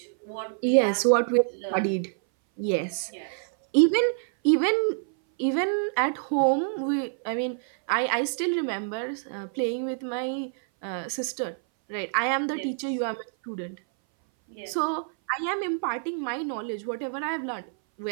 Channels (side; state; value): left; silent; 59 dB below the other